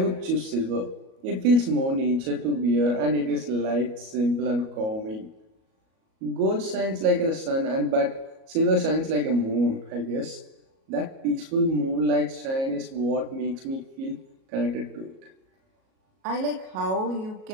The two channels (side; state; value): left; late; 37 ms